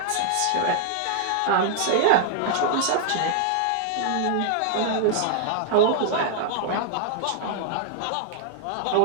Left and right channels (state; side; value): different; both; correlation -0.01